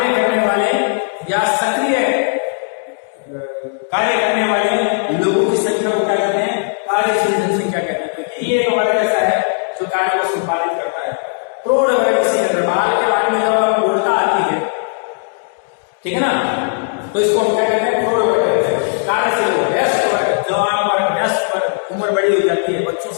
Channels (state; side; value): silent; right; 67 dB below the other